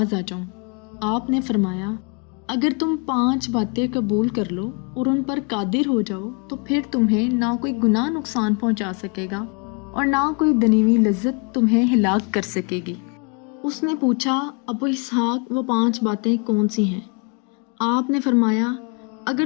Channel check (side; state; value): right; quieter; 34.1 dB